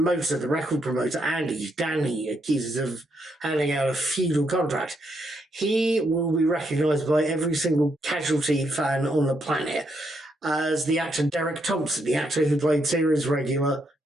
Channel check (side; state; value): both; normal; correlation 0.78